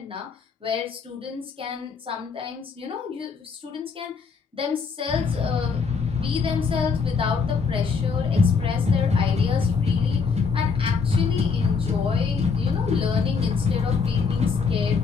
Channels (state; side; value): quieter; right; 5.3 dB